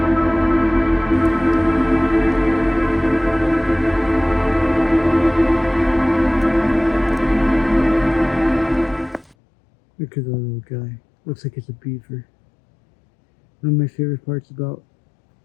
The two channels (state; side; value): drops out; right; at 9.3 s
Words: Look at that little guy. Looks like it's a beaver. One of my favorite parts about